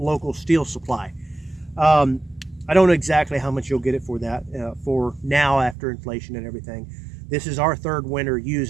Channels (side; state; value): left; drops out; at 5.8 s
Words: steel supply. I don't know exactly how much you'll get it for that, for now after inflation and everything. This is our 3rd winter